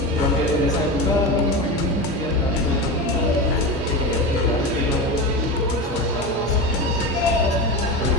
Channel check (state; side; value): normal; both; correlation 0.23